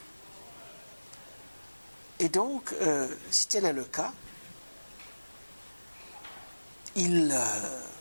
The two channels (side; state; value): both; inverted; correlation -1.00